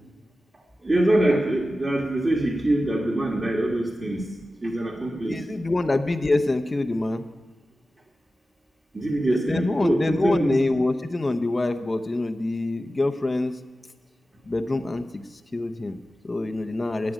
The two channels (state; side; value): normal; both; correlation 0.94